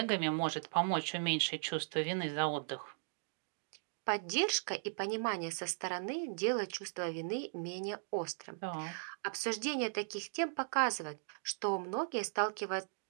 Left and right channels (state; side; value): silent; left; digital silence